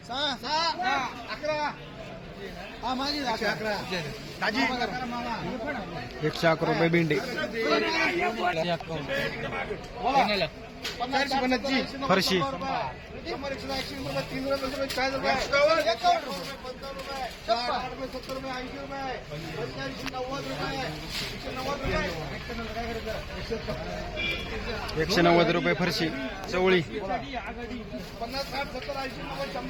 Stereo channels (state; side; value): identical; both; correlation 1.00